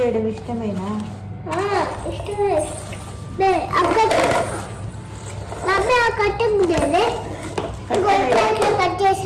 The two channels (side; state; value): both; identical; correlation 1.00